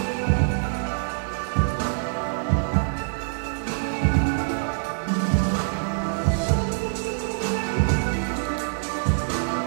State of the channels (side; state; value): left; silent; digital silence